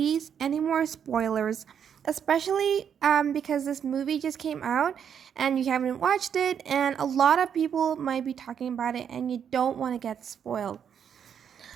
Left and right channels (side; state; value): left; quieter; 8.1 dB